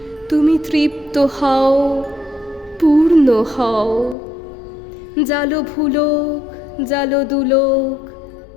তুমি তৃপ্ত হও, পূর্ণ হও, জালো ভুলোক জালো দুলোক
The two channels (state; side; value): drops out; right; at 4.2 s